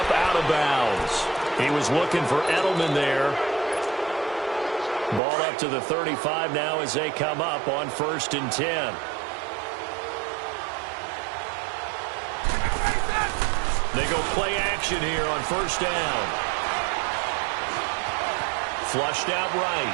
out of bounds. He was looking for Edelman there. Ball up to the 35 now as they come up on 1st and 10. They go play action here on 1st down. Flushed out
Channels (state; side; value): drops out; left; at 5.2 s